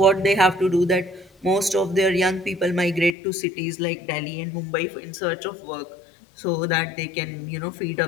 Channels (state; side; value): drops out; right; at 3.2 s